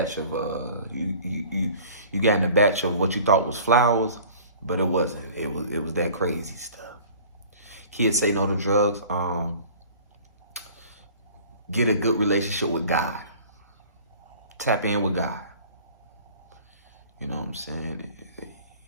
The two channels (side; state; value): both; inverted; correlation -0.47